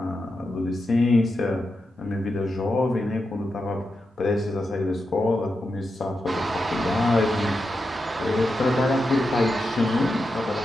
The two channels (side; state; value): both; normal; correlation 0.88